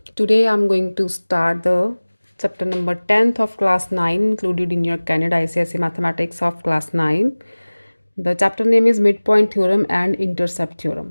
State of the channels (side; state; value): both; inverted; correlation -1.00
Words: today I'm going to start the chapter number 10th of class 9, included in your Canada ICSE Mathematics of class 9. The chapter name is Midpoint Theorem and Intercept